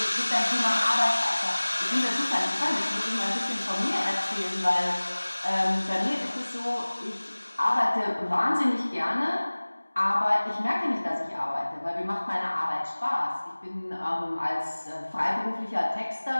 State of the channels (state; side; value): inverted; both; correlation -1.00